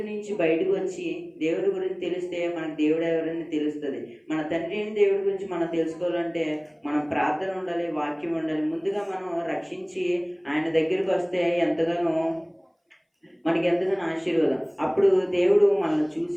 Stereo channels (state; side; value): identical; both; correlation 1.00